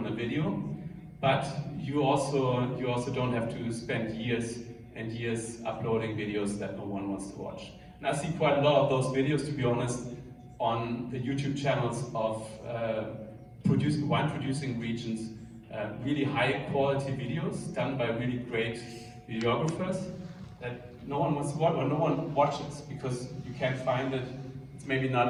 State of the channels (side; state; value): both; identical; correlation 1.00